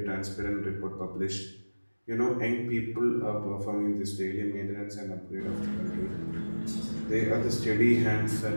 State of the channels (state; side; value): inverted; both; correlation -1.00